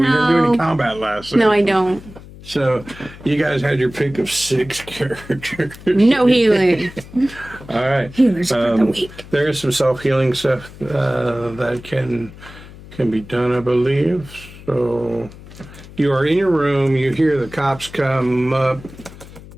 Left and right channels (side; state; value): left; noise; hum, 18 dB below the sound